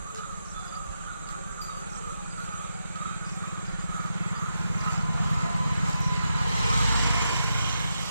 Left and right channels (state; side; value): inverted; both; correlation -0.85